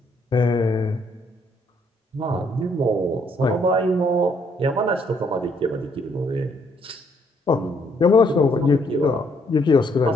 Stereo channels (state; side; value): normal; both; correlation 0.69